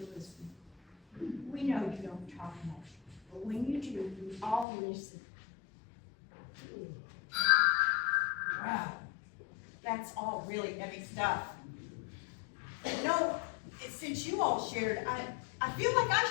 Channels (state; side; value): drops out; right; at 4.7 s